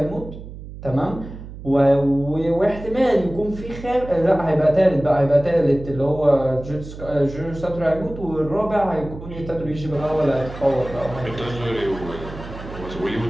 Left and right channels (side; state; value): right; noise; hum, 13 dB below the sound